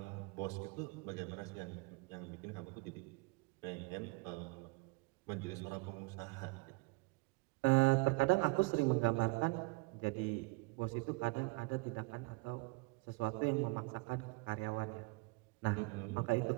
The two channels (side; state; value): left; quieter; 26.5 dB